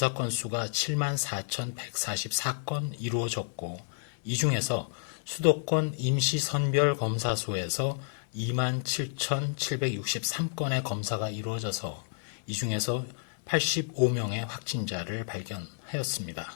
건수가 74,144건 이루어졌고, 이 중에서 수도권 임시선별검사소에서 27,763건의 검사가 이루어져서 이 중에서 85명의 확진자를 발견하였습니다.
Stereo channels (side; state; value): right; silent; digital silence